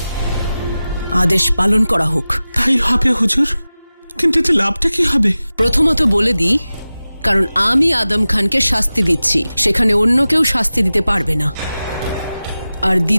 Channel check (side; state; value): both; inverted; correlation -0.96